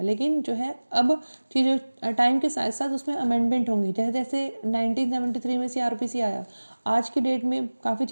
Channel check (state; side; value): inverted; both; correlation -1.00